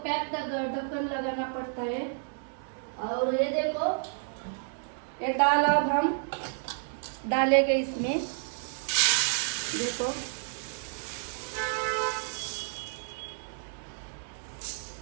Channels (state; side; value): silent; left; digital silence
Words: पैक ढक्कन लगाना पड़ता है। और ये देखो ये दाल अब हम डालेंगे इसमें, देखो